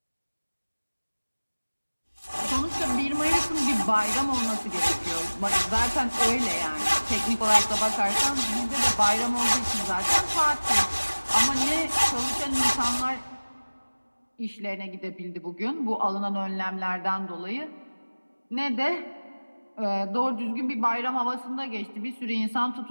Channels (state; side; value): inverted; both; correlation -1.00